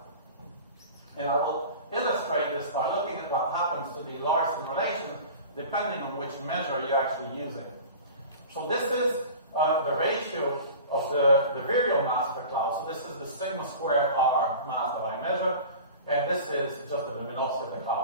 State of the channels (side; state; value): both; inverted; correlation -0.38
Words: And I will illustrate this by looking at what happens to the Larson relation, depending on which measure you're actually using. So this is the ratio of the virial mass of the cloud. So this is the sigma squared R mass that I measure, and this is just the luminosity of the